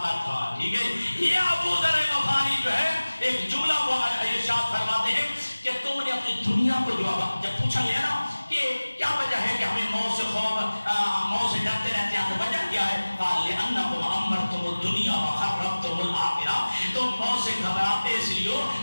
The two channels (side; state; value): both; inverted; correlation -1.00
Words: تھا. ٹھیک ہے. یہ ابو ذر غفاری جو ہے ایک جملہ وہ ارشاد فرماتے ہیں کہ تم نے اپنی دنیا کو جب پوچھا گیا نا کہ کیا وجہ ہے کہ ہمیں موت سے موت سے ڈرتے رہتے ہیں, تو وجہ کیا ہے؟ قال لأنکم امرتم الدنیا وخربتم الآخرہ. تم موت سے گھبراتے اس لیے